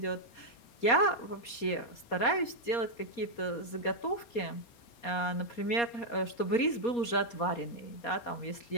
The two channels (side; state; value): right; late; 4.2 ms